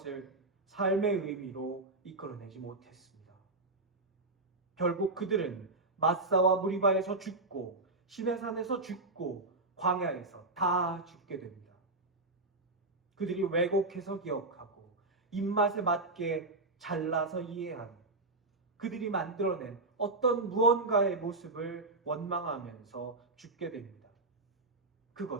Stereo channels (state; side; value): quieter; left; 3.1 dB